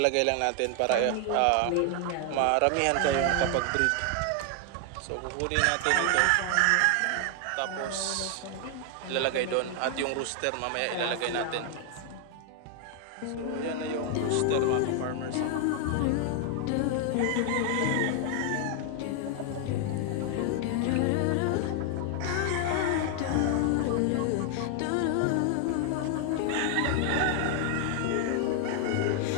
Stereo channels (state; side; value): different; both; correlation 0.00